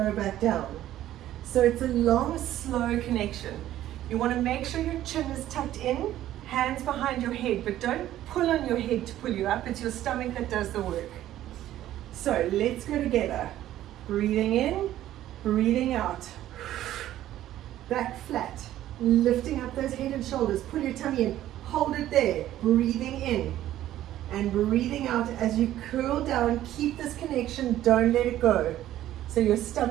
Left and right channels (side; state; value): left; quieter; 13.2 dB